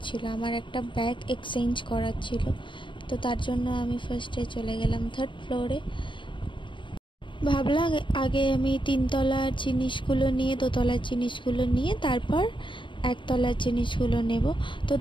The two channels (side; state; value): right; late; 0.24 ms